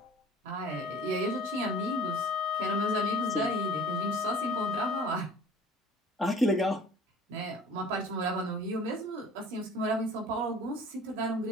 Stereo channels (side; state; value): both; normal; correlation 0.46